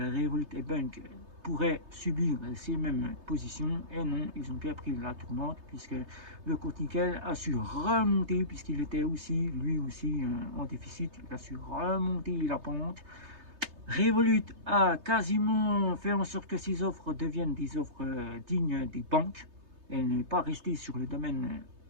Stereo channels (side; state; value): left; late; 3.3 ms